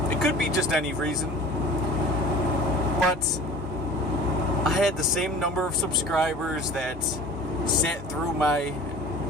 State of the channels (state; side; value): normal; both; correlation 0.43